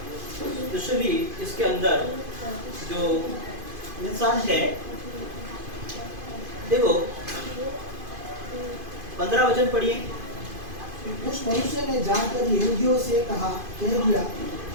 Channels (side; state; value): left; late; 2.5 ms